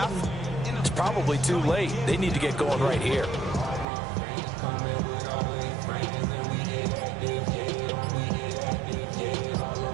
it's probably too late. They need to get going right here.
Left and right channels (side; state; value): left; drops out; at 3.9 s